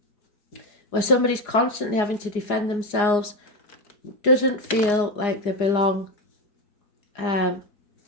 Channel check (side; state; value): right; late; 4.9 ms